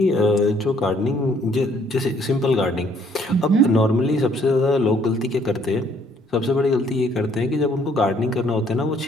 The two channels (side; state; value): both; normal; correlation 0.64